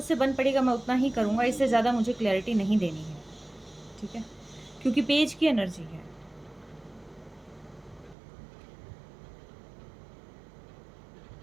बन पड़ेगा मैं उतना ही करूँगा, इससे ज़्यादा मुझे क्लैरिटी नहीं देनी है, ठीक है? क्योंकि पेज की एनर्जी है।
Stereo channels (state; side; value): drops out; left; at 8.2 s